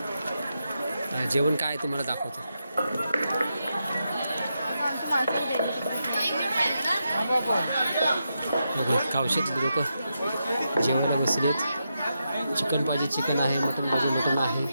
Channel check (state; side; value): inverted; both; correlation -0.86